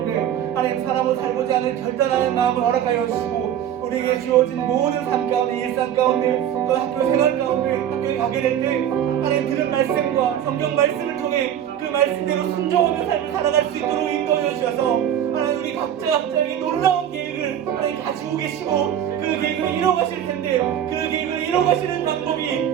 하나님 사람으로 살고자 하는 결단하는 마음을 허락하여 주시고 우리에게 주어진 모든 삶 가운데 일상 가운데 또 학교 생활 가운데 학교에 가게 될 때 하나님 들은 말씀과 성경 말씀을 통해 그 말씀대로 순종하며 삶을 살아갈 수 있도록 인도해 주셔서 하나님 우리 각자에게 놀라운 계획을 하나님 가지고 계시고 그 계획을 이뤄가실 텐데 그 계획을 이뤄가시는 방법이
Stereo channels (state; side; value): quieter; left; 10.2 dB